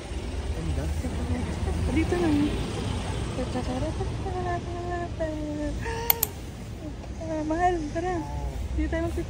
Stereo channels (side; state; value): both; identical; correlation 1.00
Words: Dito lang. Pa-pa-para-pa. Mahal, tara. Dito tayo